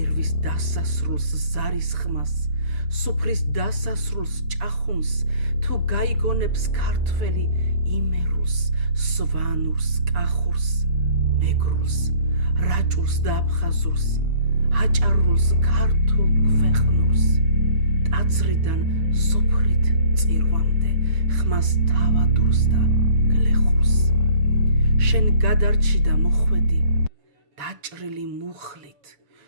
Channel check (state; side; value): late; left; 7.0 ms